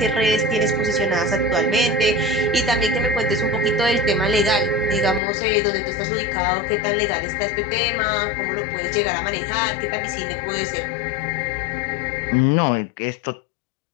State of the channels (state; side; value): drops out; right; at 5.2 s